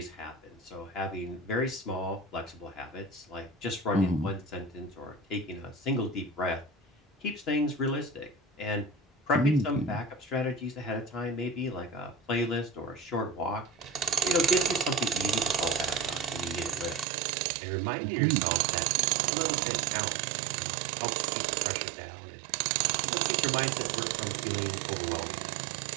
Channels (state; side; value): drops out; left; at 17.1 s